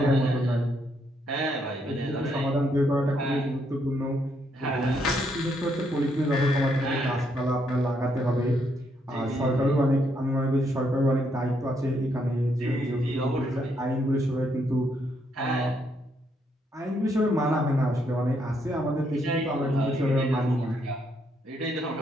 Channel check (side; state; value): both; normal; correlation 0.75